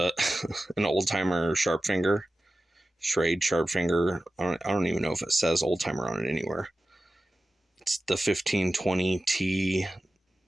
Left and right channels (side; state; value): both; normal; correlation 0.94